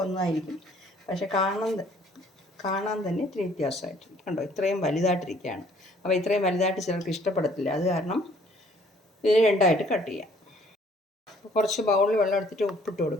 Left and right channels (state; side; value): normal; both; correlation 0.59